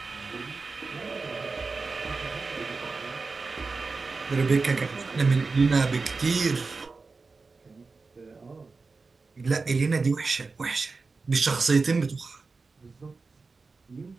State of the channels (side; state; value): left; quieter; 4.1 dB